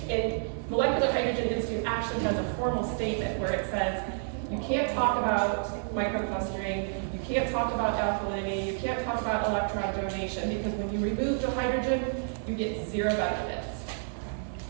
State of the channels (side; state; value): left; silent; digital silence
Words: And Molecular Hydrogen Institute actually has a formal statement where it says you can't talk about microclustering, you can't talk about alkalinity, you can't talk about electron donation, because when you remove the hydrogen, you get zero benefits.